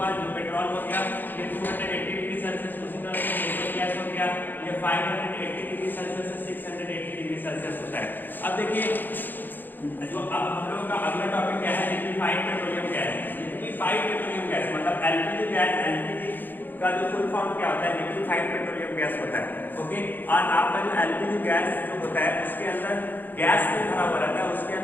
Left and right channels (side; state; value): right; late; 0.090 ms